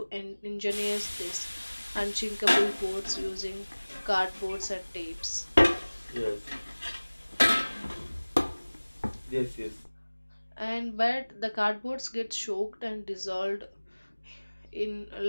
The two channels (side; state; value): both; inverted; correlation -1.00